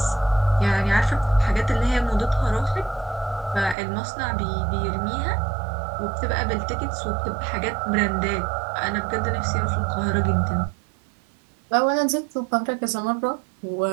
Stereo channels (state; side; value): drops out; left; at 3.8 s